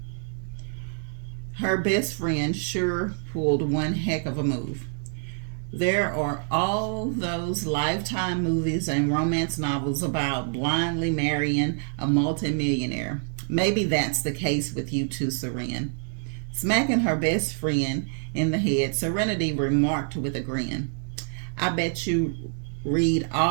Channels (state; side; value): silent; left; 61 dB below the other